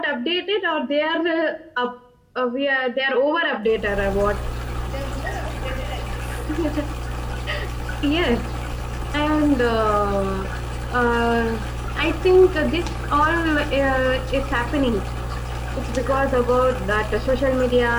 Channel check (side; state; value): both; identical; correlation 1.00